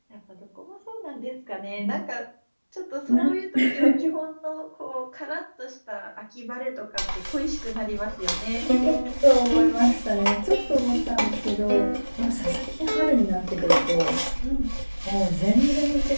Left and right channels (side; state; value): both; inverted; correlation -1.00